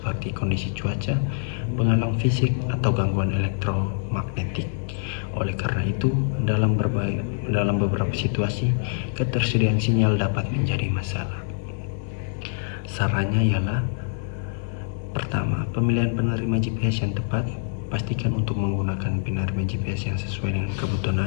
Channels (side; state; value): right; silent; digital silence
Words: kondisi cuaca, penghalang fisik, atau gangguan elektromagnetik. Oleh karena itu, dalam beberapa situasi, ketersediaan sinyal dapat menjadi masalah. Sarannya ialah: pertama, pemilihan penerima GPS yang tepat. Pastikan untuk menggunakan penerima GPS yang sesuai dengan kebutuhan